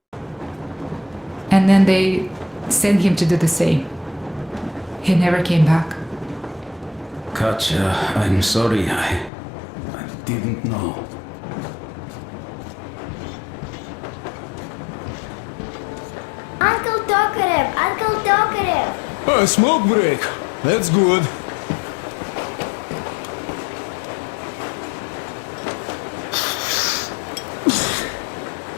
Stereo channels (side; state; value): right; drops out; at 9.3 s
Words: And then they sent him to do the same. He never came back. Katya, I'm sorry. I didn't know. Uncle Tokarev! Uncle Tokarev! A smoke break. That's good.